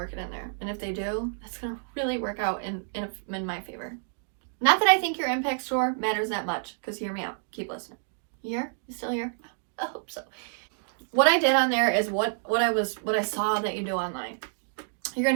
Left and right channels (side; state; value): left; silent; digital silence